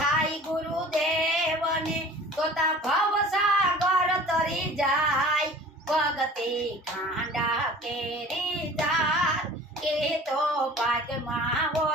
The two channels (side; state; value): both; normal; correlation 0.44